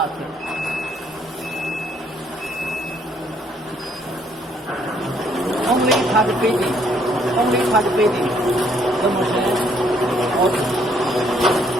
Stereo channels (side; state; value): both; normal; correlation 0.67